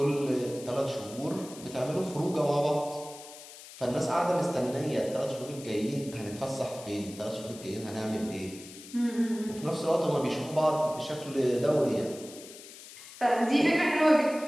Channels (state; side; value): noise; left; hiss, 16 dB below the sound